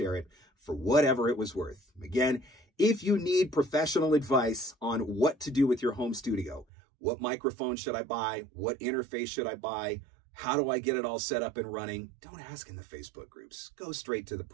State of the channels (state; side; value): drops out; left; at 6.7 s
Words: it for whatever it was worth. Again, if you need professional advice on what to do with your home studio, what microphone should I buy? What interface should I buy? How do I get it all set up and running? Don't ask in the Facebook groups. Go straight to the